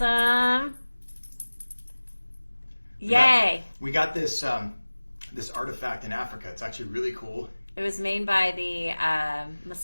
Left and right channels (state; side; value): inverted; both; correlation -1.00